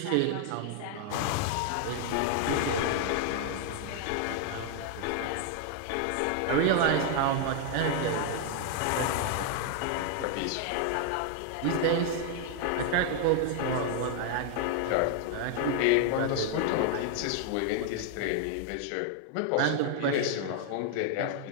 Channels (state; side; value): different; both; correlation 0.00